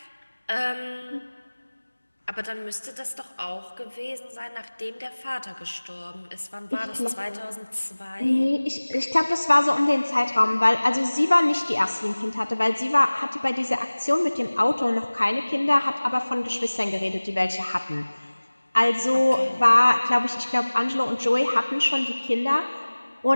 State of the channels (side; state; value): both; inverted; correlation -1.00